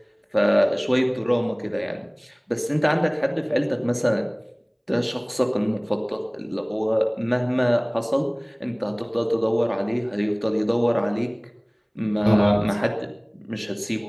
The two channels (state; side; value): identical; both; correlation 1.00